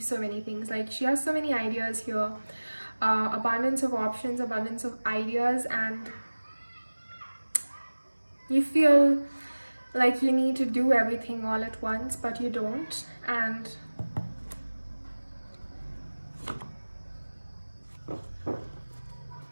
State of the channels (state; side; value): inverted; both; correlation -1.00